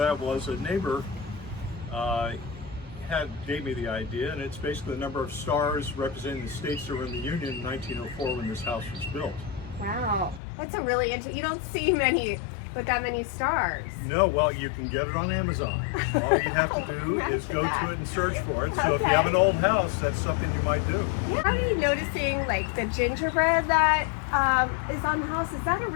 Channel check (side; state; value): right; drops out; at 10.4 s